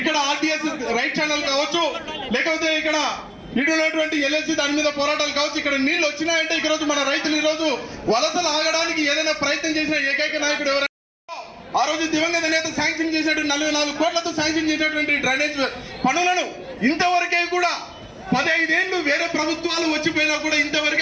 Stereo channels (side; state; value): both; identical; correlation 1.00